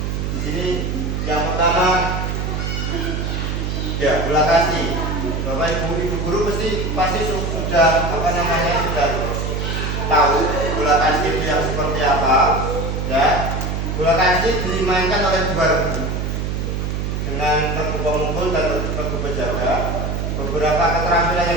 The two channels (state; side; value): noise; right; hum, 2 dB below the sound